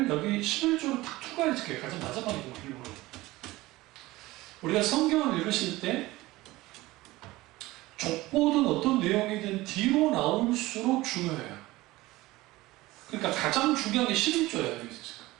여기 11조로 탁 추가해줄게요. 가장 마지막에 일부러. 우리가 성경을 읽으실 때 족보든 어떤 내용이든 뒤로 나올수록 중요해요. 그러니까 가장 중요한 게 11조예요. 여기서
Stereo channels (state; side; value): quieter; left; 19.0 dB